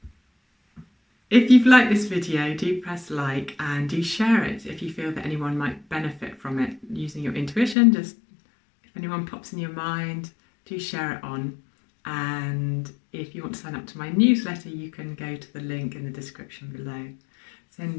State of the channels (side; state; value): right; drops out; at 7.8 s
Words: If you've liked this video, do press like and do share it if you feel that anyone might benefit from it. Using your intuition, just if anyone pops in your mind, do share it on. And if you want to sign up to my newsletter, you can go to the link in the description below.